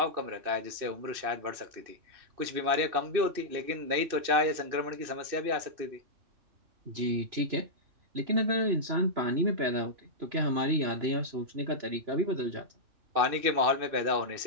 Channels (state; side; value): late; left; 2.6 ms